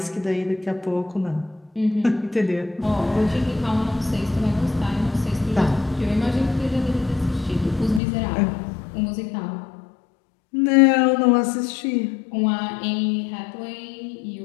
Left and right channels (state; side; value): drops out; right; at 8.0 s